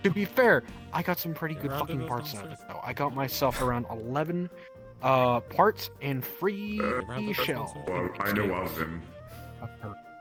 be fair, I got some pretty good fucking parts out of it though. I got myself around 11 parts and free shell. Well, I know of them.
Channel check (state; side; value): identical; both; correlation 1.00